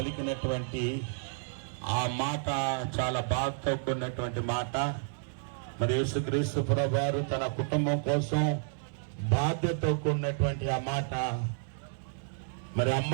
ఆ మాట చాలా బాధతో కూడినటువంటి మాట. మరి యేసుక్రీస్తు ప్రభువారు తన కుటుంబం కోసం బాధ్యతతో కూడినటువంటి ఆ మాట. మరి అమ్మ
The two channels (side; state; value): left; silent; digital silence